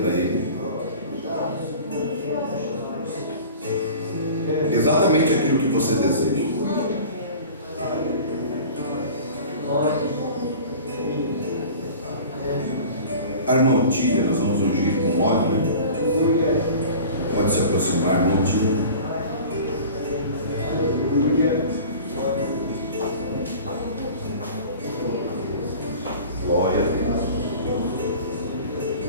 ele exatamente aquilo que você deseja. A irmã Otília, nós vamos ungir com óleo, né? Pode se aproximar, irmã Otília. Glória a Deus.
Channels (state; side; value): inverted; both; correlation -0.40